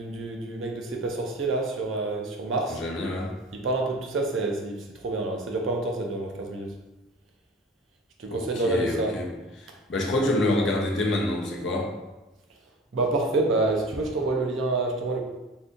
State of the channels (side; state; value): both; normal; correlation 0.39